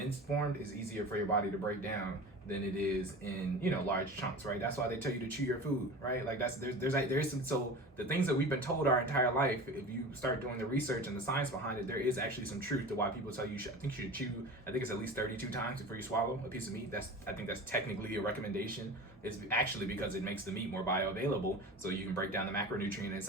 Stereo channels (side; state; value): both; normal; correlation 0.34